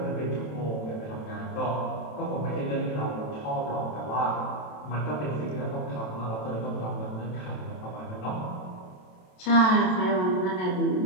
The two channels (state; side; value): late; right; 27 ms